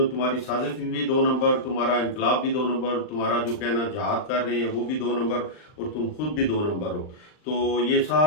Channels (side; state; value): right; late; 39 ms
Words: तुम्हारी साजिश भी 2 नंबर, तुम्हारा इनकलाब भी 2 नंबर, तुम्हारा जो कहना जहाद कर रहे हैं वो भी 2 नंबर और तुम खुद भी 2 नंबर हो। तो ये